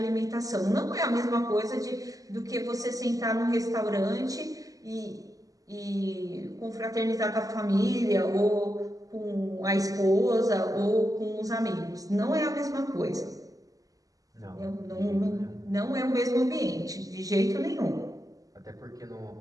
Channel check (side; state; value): left; late; 0.17 ms